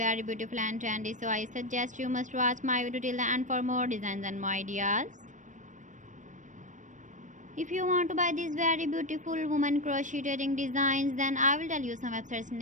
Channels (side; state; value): left; late; 0.37 ms